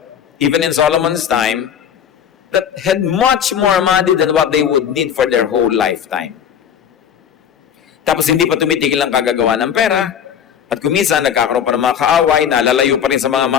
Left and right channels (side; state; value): right; quieter; 8.5 dB